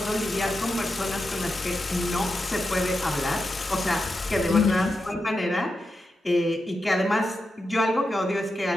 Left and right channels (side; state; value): both; normal; correlation 0.88